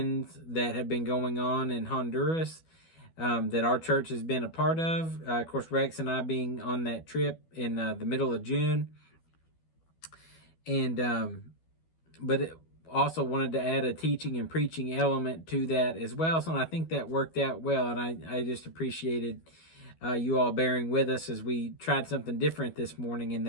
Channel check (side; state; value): right; late; 12 ms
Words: that have been going on in Honduras, that our church has been a part of. Of course, Rex and I being on that trip in the middle of June. But it also wanted to add a teaching and preaching element to that as well. So I think that worked out well. And I just appreciated you all bearing with us as we tried something different this morning in